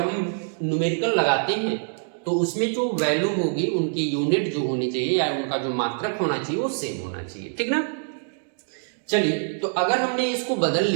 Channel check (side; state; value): left; silent; digital silence